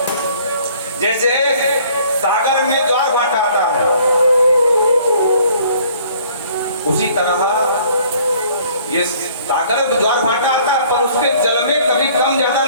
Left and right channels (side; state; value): both; inverted; correlation -0.58